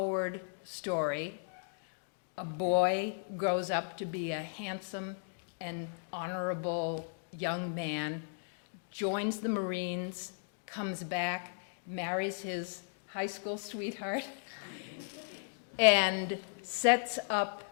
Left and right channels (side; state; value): right; silent; digital silence